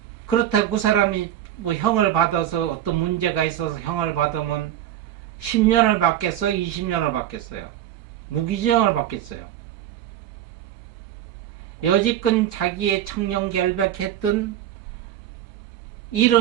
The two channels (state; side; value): quieter; left; 11.6 dB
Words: 그렇다고 그 사람이 뭐 형을 받아서 어떤 문제가 있어서 형을 받으면 10년을 받겠어요? 20년을 받겠어요? 무기징역을 받겠어요? 여지껏 자기의 청렴결백했던